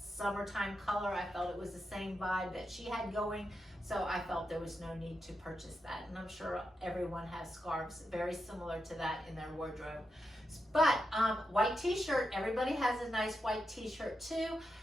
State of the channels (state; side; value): normal; both; correlation 0.87